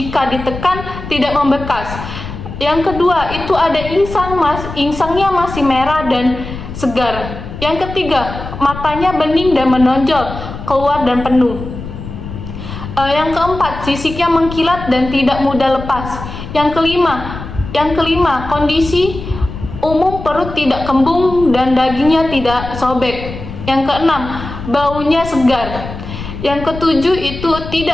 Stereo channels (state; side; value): noise; left; rumble, 10 dB below the sound